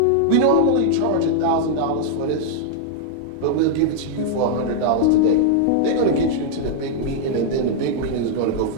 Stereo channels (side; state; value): both; different; correlation -0.01